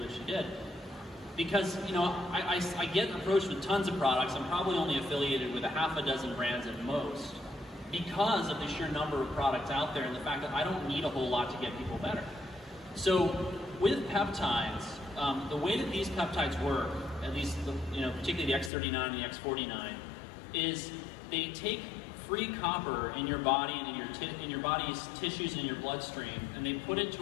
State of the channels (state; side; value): drops out; right; at 18.7 s